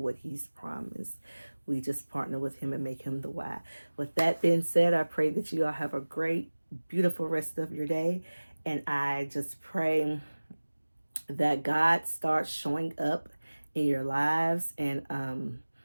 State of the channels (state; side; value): inverted; both; correlation -1.00